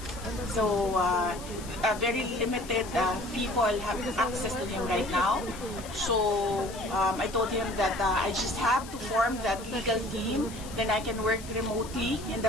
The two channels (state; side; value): noise; left; hiss, 16 dB below the sound